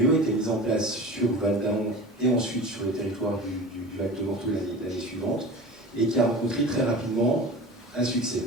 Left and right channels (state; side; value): normal; both; correlation 0.35